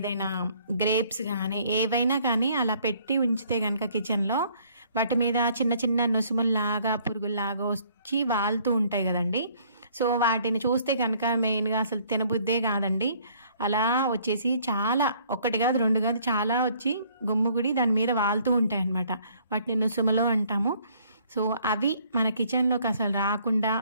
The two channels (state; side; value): inverted; both; correlation -0.61